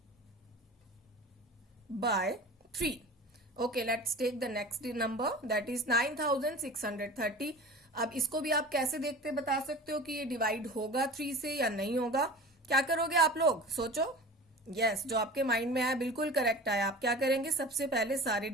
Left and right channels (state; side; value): normal; both; correlation 0.37